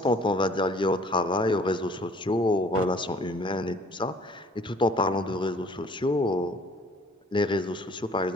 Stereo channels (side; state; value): both; normal; correlation 0.54